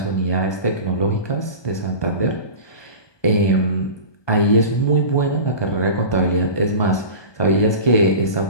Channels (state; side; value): late; right; 1.2 ms